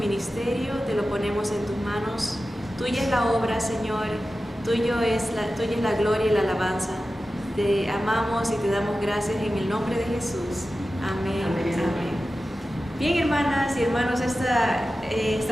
te lo ponemos en tus manos. Tuya es la obra, Señor, tuya es la gloria y la alabanza. Te amamos y te damos gracias en el nombre de Jesús. Amén. Amén. Amén. Bien, hermanas y hermanos,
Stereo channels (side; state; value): both; normal; correlation 0.94